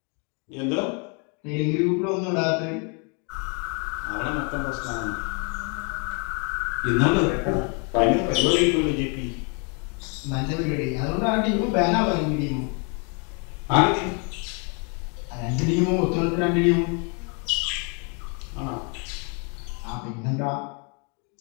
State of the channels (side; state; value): right; quieter; 35.8 dB